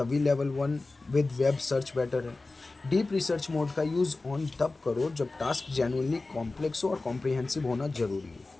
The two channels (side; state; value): right; quieter; 3.4 dB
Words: level 1 with web search better है। डीप रिसर्च मोड का यूज़ ऑन तब करो जब टास्क जेन्युइनली कॉम्प्लेक्स हो और कॉम्प्रिहेंसिव होना ज़रूरी